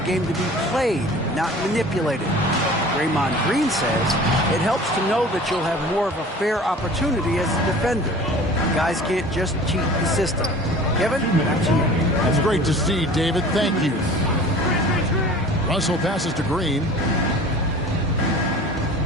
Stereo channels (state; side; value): normal; both; correlation 0.43